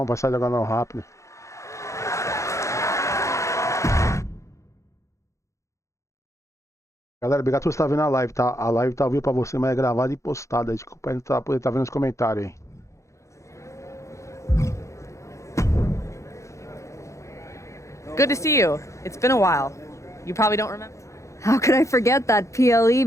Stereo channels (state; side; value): late; right; 0.15 ms